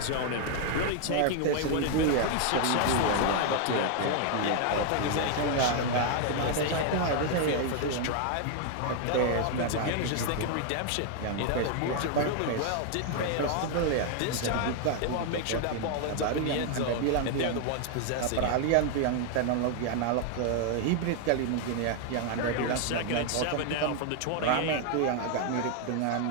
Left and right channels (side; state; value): both; different; correlation 0.00